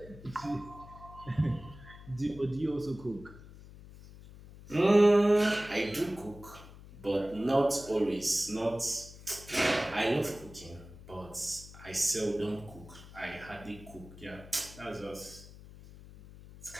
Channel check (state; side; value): noise; left; hum, 18 dB below the sound